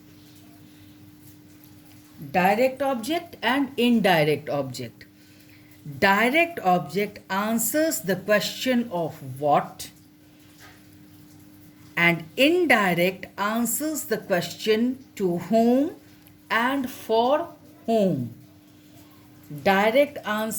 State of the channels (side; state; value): both; identical; correlation 1.00